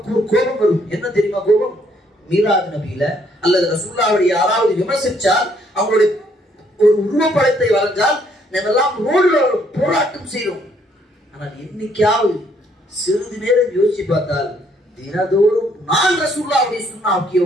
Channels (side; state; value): both; normal; correlation 0.68